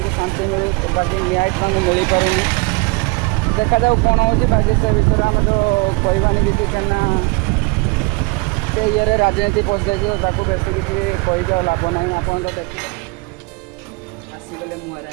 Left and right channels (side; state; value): left; quieter; 27.7 dB